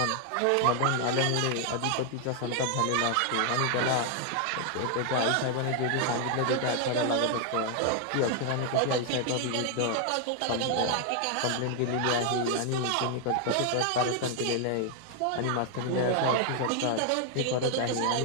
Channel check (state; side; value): different; both; correlation 0.00